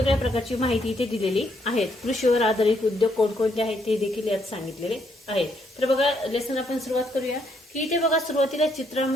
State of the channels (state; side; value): normal; both; correlation 0.73